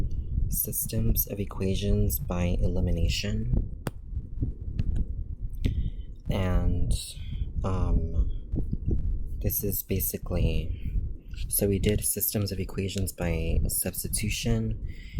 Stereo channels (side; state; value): both; identical; correlation 1.00